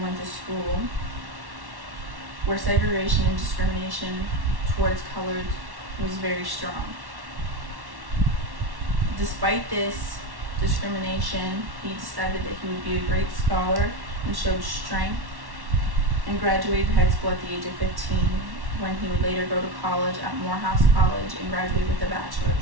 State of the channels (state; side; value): late; left; 1.1 ms